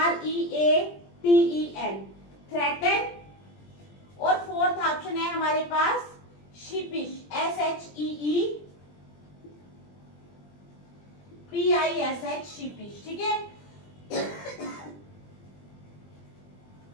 थ्रेटन। और फोर्थ ऑप्शन है हमारे पास शिपिश, SHEEPISH, शिपिश। ठीक है,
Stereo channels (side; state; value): right; late; 20 ms